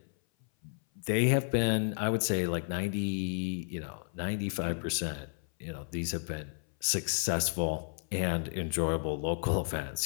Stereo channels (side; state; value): right; silent; 56 dB below the other